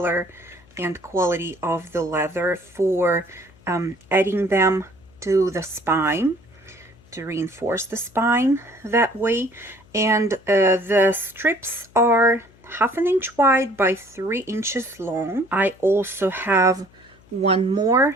and quality of the leather for adding them to the spine, to reinforce the spine that way. And the strips are 1/2 inch wide by 3 inches long. I also have one more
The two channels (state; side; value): noise; left; hum, 28 dB below the sound